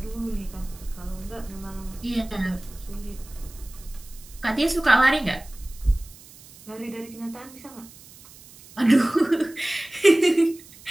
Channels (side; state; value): right; noise; hiss, 21 dB below the sound